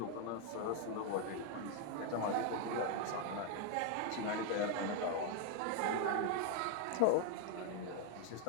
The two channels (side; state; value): both; different; correlation 0.01